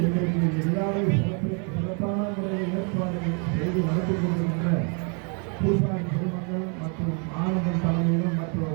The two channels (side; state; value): left; quieter; 37.9 dB